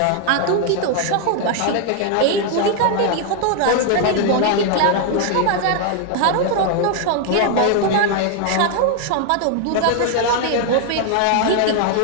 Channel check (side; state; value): both; different; correlation 0.00